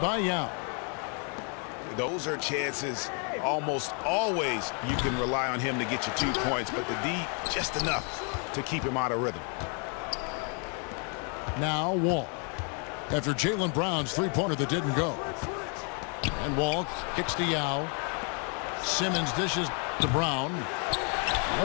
by Yao. Those are chances almost always you can rely on him to get you 2 points, but the D just enough to keep him out of rhythm. Now Wall. After Jaylen Brown's three-pointer that didn't go. And Wall kicks to Yao. Simmons dishes to Brown.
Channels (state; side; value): quieter; right; 38.7 dB